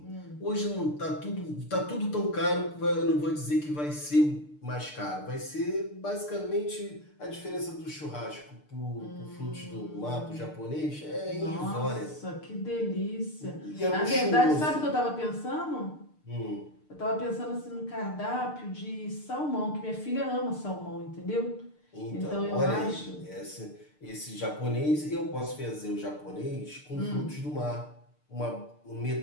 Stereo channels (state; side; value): late; right; 6.7 ms